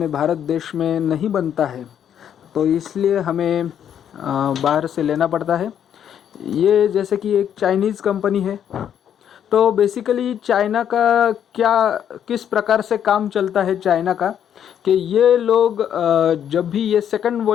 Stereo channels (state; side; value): quieter; right; 9.3 dB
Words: भारत देश में नहीं बनता है, तो इसलिए हमें बाहर से लेना पड़ता है। ये जैसे कि एक चाइनीज़ कंपनी है, तो बेसिकली चाइना का क्या, किस प्रकार से काम चलता है चाइना का, कि ये लोग जब भी ये सेकंड